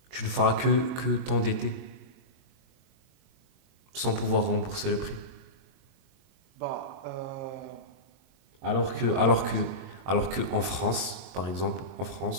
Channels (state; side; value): late; left; 22 ms